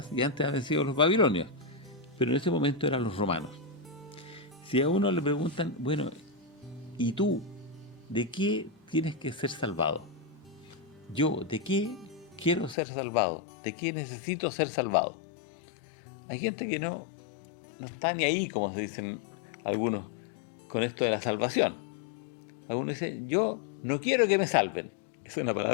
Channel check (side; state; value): right; drops out; at 12.8 s